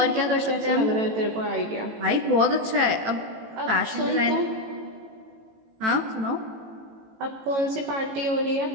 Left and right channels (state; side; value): late; left; 18 ms